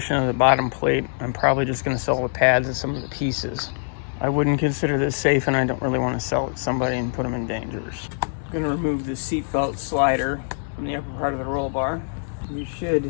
of the bottom plate, I'm probably just going to sell the pads and some of the pieces. I wouldn't consider this safe, and I don't really want to sell it to somebody and put them in danger. I'm going to remove the seatbelt slider from the upper part of the roll bar. You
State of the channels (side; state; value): right; silent; digital silence